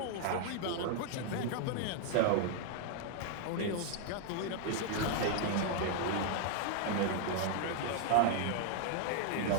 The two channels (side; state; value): both; different; correlation 0.00